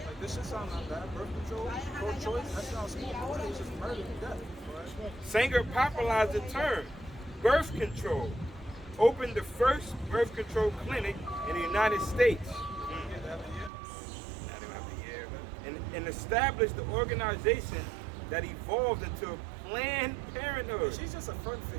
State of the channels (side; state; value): left; drops out; at 13.7 s